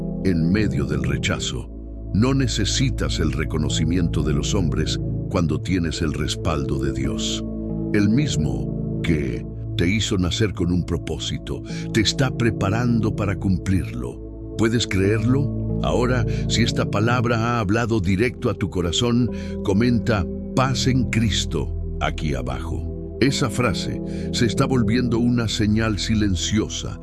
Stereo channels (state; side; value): identical; both; correlation 1.00